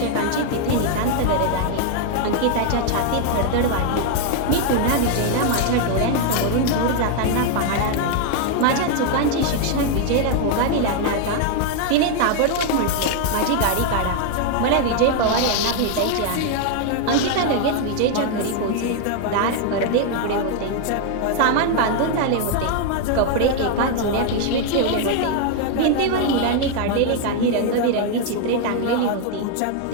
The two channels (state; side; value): different; both; correlation 0.00